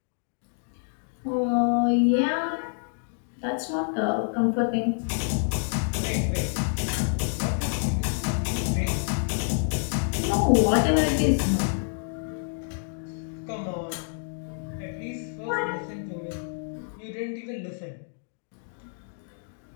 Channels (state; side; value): silent; right; digital silence